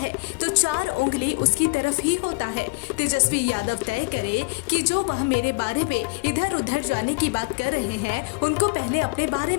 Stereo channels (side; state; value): right; quieter; 27.9 dB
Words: तो 4 उंगली उसकी तरफ ही होता है। तेजस्वी यादव तय करे कि जो वह मेरे बारे में इधर उधर जाने की बात कर रहे हैं उनको पहले अपने बारे